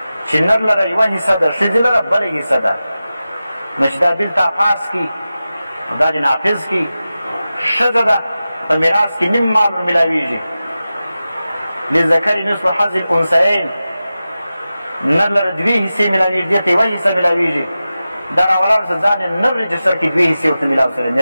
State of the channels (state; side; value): inverted; both; correlation -0.94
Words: چې نر لره یوه حصه ده ښځې لره بله حصه ده نو چې دا بیل تا پاس کي دا دې نافظ کي ښځه ده په میراث کې نیم مال ور میلاویږي لذکر نصف حظ الانثیین نر لره دوې حصې میلاویږي دې ته یوه حصه میلاویږي دا راولاړ شه ځان یې نر رجسټر کړي دوې حصې ورته میلاو سره